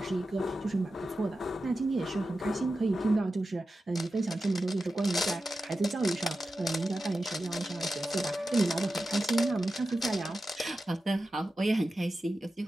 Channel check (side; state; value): both; normal; correlation 0.92